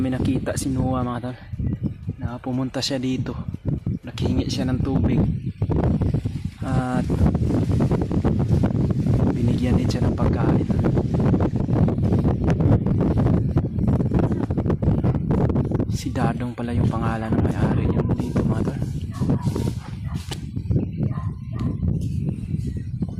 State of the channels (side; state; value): both; identical; correlation 1.00